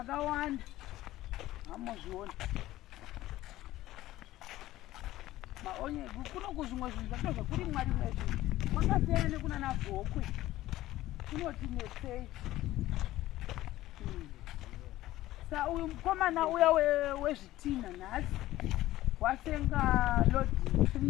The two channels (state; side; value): quieter; right; 15.7 dB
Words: Hamozviona. Maonye kuno kuzvimwe zvinhu zvakazva kuri mwari mwezvi. Kwakasiyana nekuna navhokwe. Kunoti netsei. Sa uyu mukomana uya wezvitina nhasi wasenga lodi